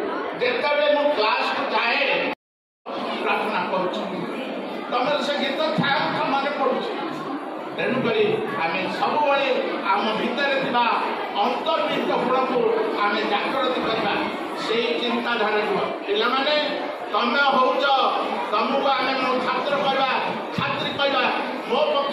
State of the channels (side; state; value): both; identical; correlation 1.00